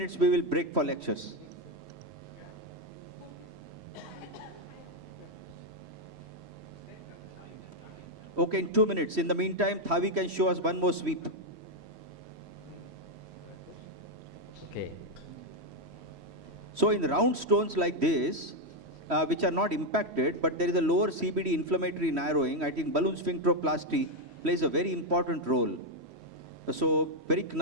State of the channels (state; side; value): late; left; 3.1 ms